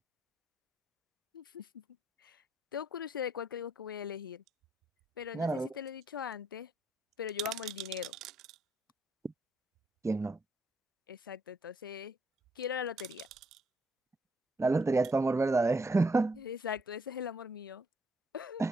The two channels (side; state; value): both; normal; correlation 0.72